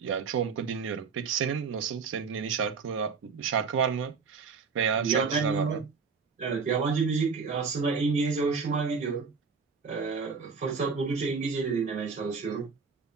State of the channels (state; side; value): quieter; left; 5.2 dB